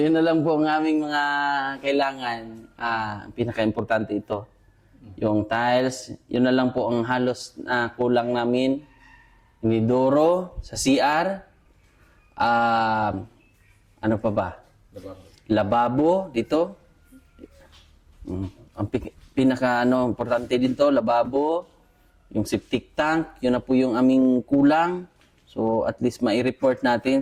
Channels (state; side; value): identical; both; correlation 1.00